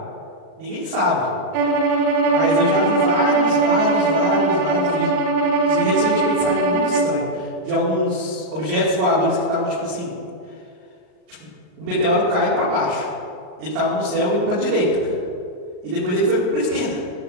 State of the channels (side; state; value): left; late; 38 ms